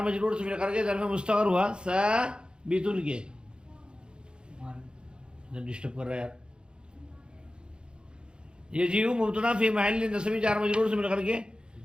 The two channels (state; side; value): late; left; 0.051 ms